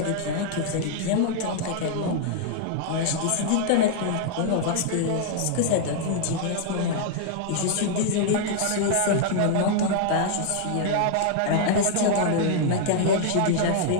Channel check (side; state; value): both; different; correlation 0.00